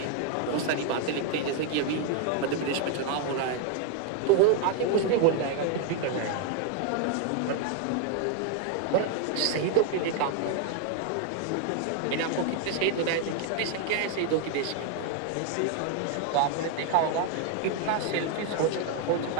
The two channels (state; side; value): different; both; correlation 0.01